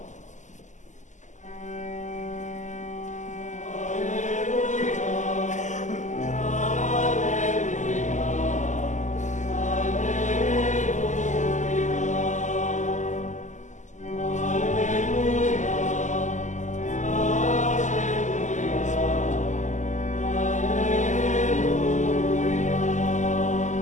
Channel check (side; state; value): right; late; 0.35 ms